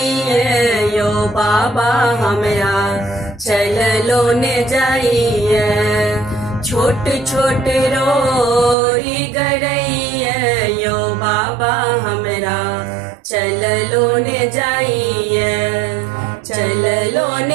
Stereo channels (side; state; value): left; drops out; at 8.8 s